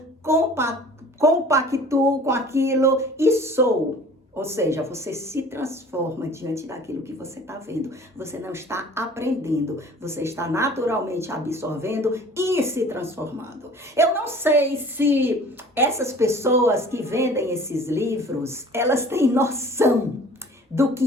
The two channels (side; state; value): both; normal; correlation 0.47